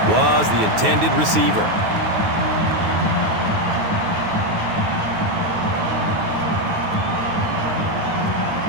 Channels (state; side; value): late; left; 9.4 ms